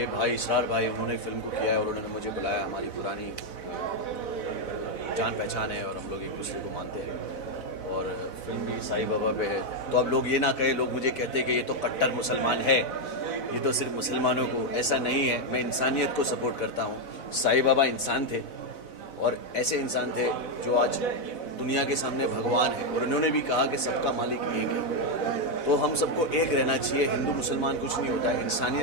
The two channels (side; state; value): right; late; 4.0 ms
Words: भाई इसरार भाई उन्होंने फिल्म को किया है और उन्होंने मुझे बुलाया। हमारी पुरानी जान पहचान है और हम लोग एक दूसरे को मानते हैं और फिल्म भी साईं बाबा पे है। तो अब लोग ये ना कहे, लोग मुझे कहते हैं कि ये तो कट्टर मुसलमान है, ये तो सिर्फ मुसलमानों को। ऐसा नहीं है, मैं इंसानियत को सपोर्ट करता हूँ। साईं बाबा इंसान थे और ऐसे इंसान थे जो आज दुनिया के सामने भगवान है और उन्होंने भी कहा कि सबका मालिक एक है। तो हम सबको एक रहना चाहिए। हिंदू मुसलमान कुछ नहीं होता है,